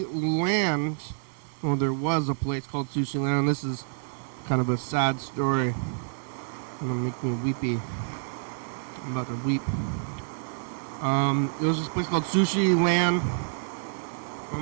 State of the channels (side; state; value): left; silent; digital silence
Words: Land. Well, there was a place called Sushi Land. This is kind of a sad story. It's gonna make me weepy. I'm about to weep. There was this place called Sushi Land.